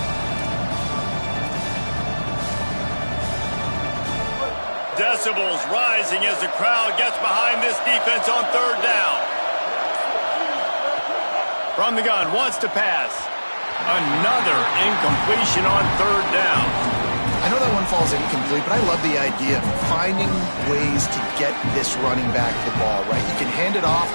Decibels rising as the crowd gets behind this defense on third down. From the gun, wants to pass. Another incompletion on third down. I know that one falls incomplete, but I love the idea of finding ways to get this running back the ball, right? You can hand it off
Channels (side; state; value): both; inverted; correlation -1.00